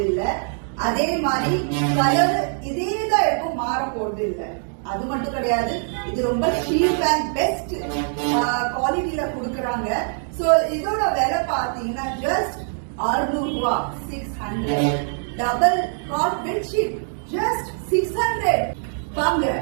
இல்ல. அதே மாதிரி கலர் இதேதான் இருக்கும், மாற போறது இல்ல. அது மட்டும் கிடையாது, இது ரொம்ப சீப் அண்ட் பெஸ்ட் குவாலிட்டியில கொடுக்கறாங்க. சோ இதோட விலை பாத்தீங்கன்னா ஜஸ்ட் 600 ரூபாய், 600. Double God bedsheet just 600. வாங்க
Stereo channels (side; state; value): left; silent; 63 dB below the other